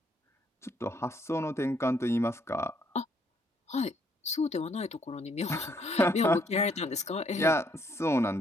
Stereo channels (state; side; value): normal; both; correlation 0.69